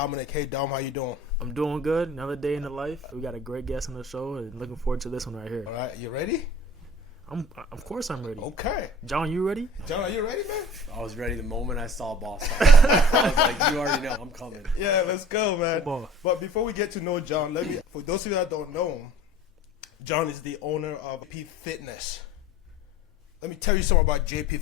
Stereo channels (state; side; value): normal; both; correlation 0.46